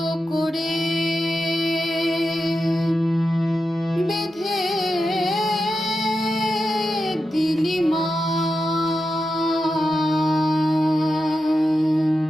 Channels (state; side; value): normal; both; correlation 0.89